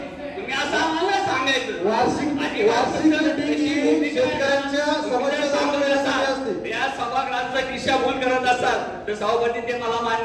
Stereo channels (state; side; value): identical; both; correlation 1.00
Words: तुम्ही असं आम्हाला सांगायचं या सभागृहाचा दिशाभूल करत असाल तर सभापती ते मला